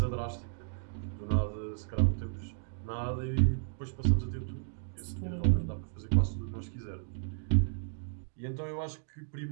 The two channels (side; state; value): left; silent; digital silence